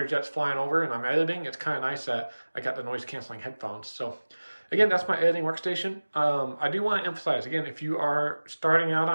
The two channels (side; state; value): both; inverted; correlation -1.00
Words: jets flying over and I'm editing, it's kind of nice that I got the noise canceling headphones. So again, that's my editing workstation. I do want to emphasize, again, if you are starting out